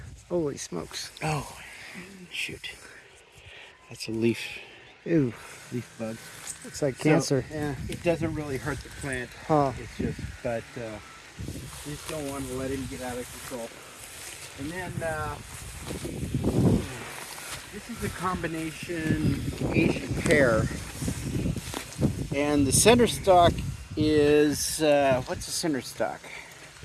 Holy smokes! Oh, shoot. That's a leaf Ew, bug. looks like cancer. So, yeah, it doesn't really hurt the plant. Huh? It's just, but you just don't want to let him get out of control. And then this is a combination Asian pear, and the center stalk is what's the center stalk?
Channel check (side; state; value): both; identical; correlation 1.00